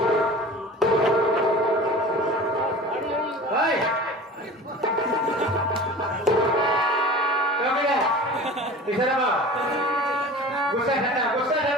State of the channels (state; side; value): normal; both; correlation 0.38